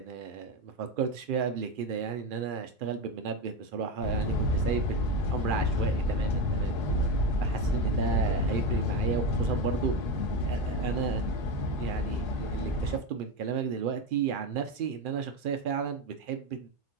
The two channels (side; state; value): left; late; 2.4 ms